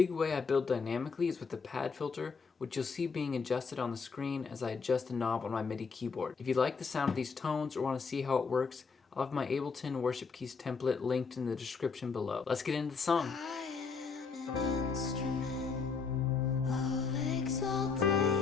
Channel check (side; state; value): right; quieter; 5.1 dB